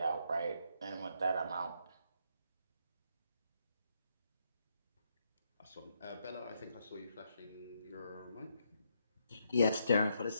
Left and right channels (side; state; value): both; inverted; correlation -0.77